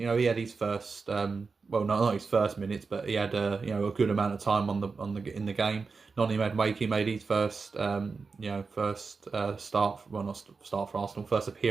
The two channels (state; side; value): quieter; left; 4.6 dB